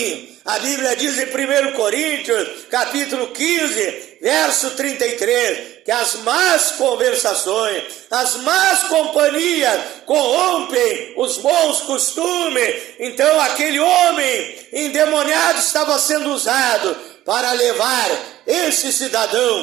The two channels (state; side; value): quieter; left; 14.3 dB